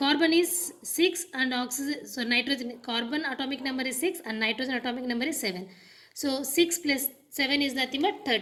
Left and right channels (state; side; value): identical; both; correlation 1.00